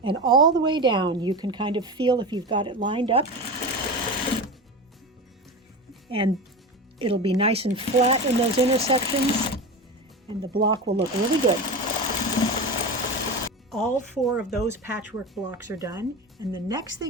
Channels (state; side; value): normal; both; correlation 0.25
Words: And all the way down, you can kind of feel if you've got it lined up. And it'll be nice and flat in those intersections, and the block will look really good. All 4 of those patchwork blocks are done, and the next